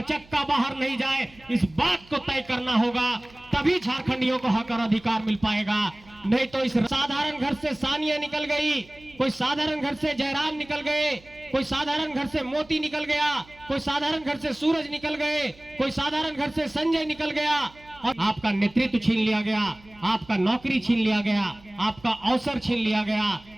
चक्का बाहर नहीं जाए, इस बात को तय करना होगा, तभी झारखंडियों को हक और अधिकार मिल पाएगा। नहीं तो इस साधारण घर से सानिया निकल गई, कोई साधारण घर से जयराम निकल गए, कोई साधारण घर से मोती निकल गया, कोई साधारण घर से सूरज निकल गए, कोई साधारण घर से संजय निकल गया और आपका नेतृत्व छीन लिया गया, आपका नौकरी छीन लिया गया, आपका अवसर छीन लिया गया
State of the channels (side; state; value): right; noise; hum, 25 dB below the sound